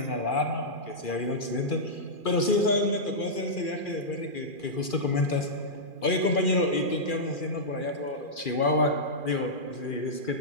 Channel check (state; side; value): late; right; 2.4 ms